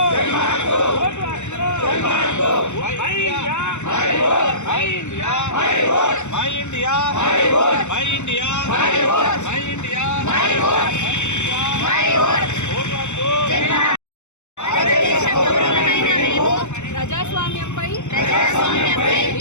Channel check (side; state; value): right; late; 0.83 ms